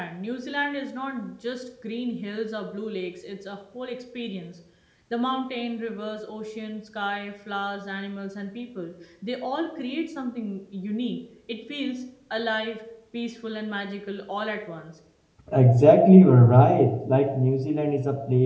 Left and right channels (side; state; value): both; identical; correlation 1.00